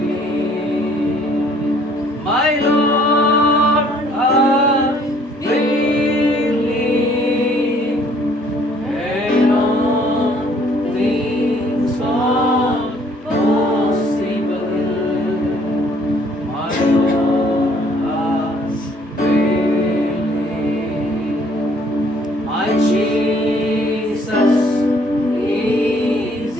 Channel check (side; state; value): both; normal; correlation 0.61